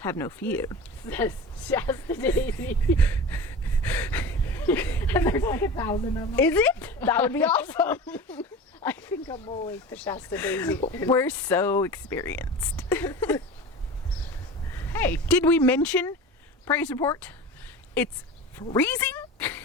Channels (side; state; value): both; normal; correlation 0.33